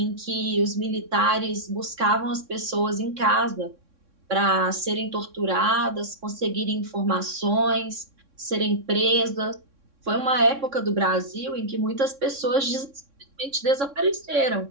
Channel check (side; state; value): left; late; 3.6 ms